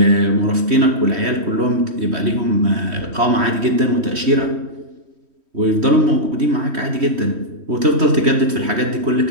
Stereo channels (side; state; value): left; late; 3.1 ms